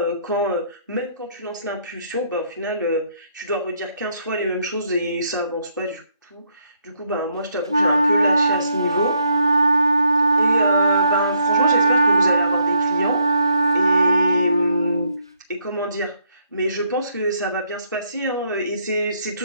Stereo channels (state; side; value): inverted; both; correlation -0.73